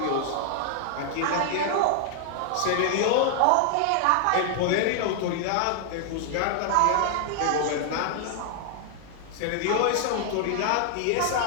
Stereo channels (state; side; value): different; both; correlation 0.00